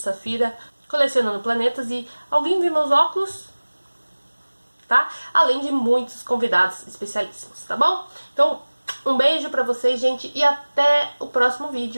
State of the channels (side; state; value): both; inverted; correlation -1.00